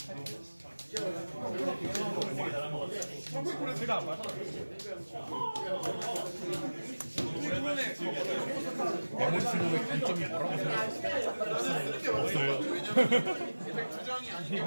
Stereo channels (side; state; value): both; inverted; correlation -1.00